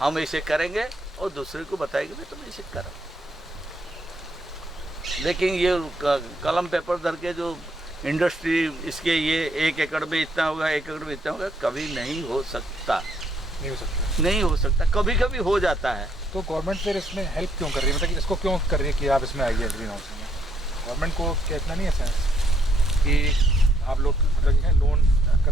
ऐसे करेंगे और दूसरे को बताएंगे भाई तुम ऐसे करो। लेकिन ये कलम पेपर धर के जो इंडस्ट्री, इसके ये 1 एकड़ में इतना होगा, 1 एकड़ में इतना होगा, कभी नहीं हो सकता, नहीं हो सकता। कभी कभी हो जाता है। तो गवर्नमेंट फिर इसमें हेल्प क्यों कर रही है, मतलब कि इसको क्यों कर रही है कि आप इसमें आइए ग्रीन हाउस में? गवर्नमेंट को क्या इतना नहीं है सेंस कि आप लोग मतलब लोन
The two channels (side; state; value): both; normal; correlation 0.71